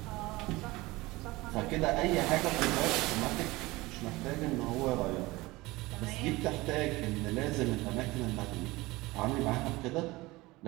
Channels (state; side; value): quieter; left; 20.8 dB